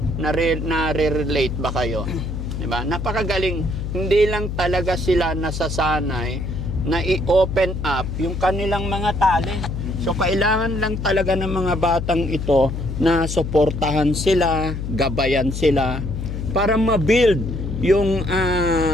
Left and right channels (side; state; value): left; noise; hum, 5 dB below the sound